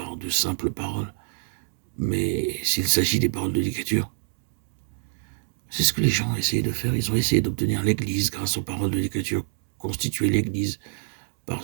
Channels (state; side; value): silent; left; digital silence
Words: de simples paroles, mais s'il s'agit des paroles de l'Écriture, c'est ce que les gens ont essayé de faire. Ils ont essayé d'obtenir l'Église grâce aux paroles de l'Écriture, constituer l'Église par